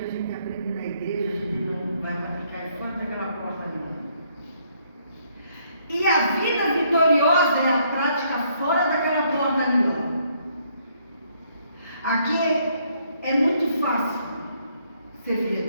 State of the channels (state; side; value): inverted; both; correlation -0.69